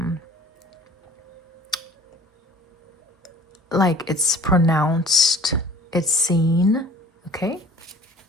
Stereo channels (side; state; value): both; normal; correlation 0.49